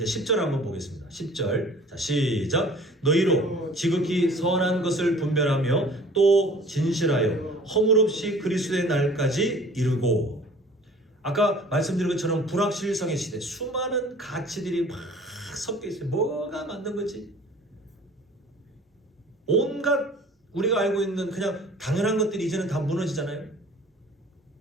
10절 한번 보겠습니다. 10절. 자, 시작. 너희로 지극히 선한 것을 분별하며 또 진실하여 허물 없이 그리스도의 날까지 이루고. 아까 말씀드린 것처럼 불확실성의 시대, 수많은 가치들이 막 섞여 있어요. 뭐가 맞는 거지? 온갖 우리가 알고 있는 그냥 당연한 것들이 이제는 다 무너지잖아요.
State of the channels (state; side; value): normal; both; correlation 0.48